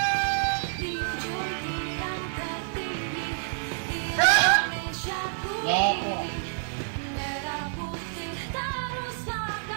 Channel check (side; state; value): left; silent; 59 dB below the other